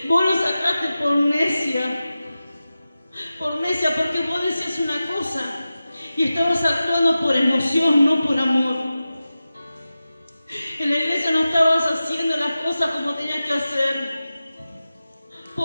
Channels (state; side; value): inverted; both; correlation -0.94